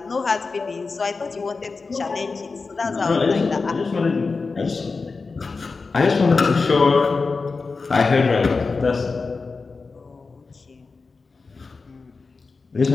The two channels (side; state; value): right; quieter; 4.3 dB